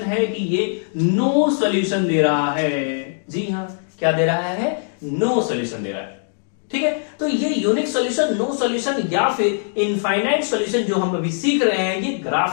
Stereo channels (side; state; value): right; silent; digital silence